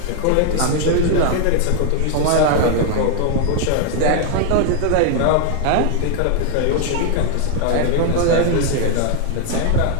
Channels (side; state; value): both; different; correlation 0.00